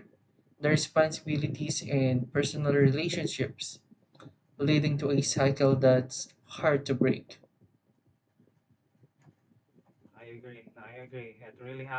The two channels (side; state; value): both; identical; correlation 1.00